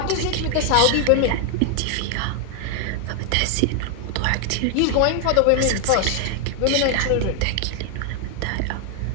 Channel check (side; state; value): both; different; correlation 0.00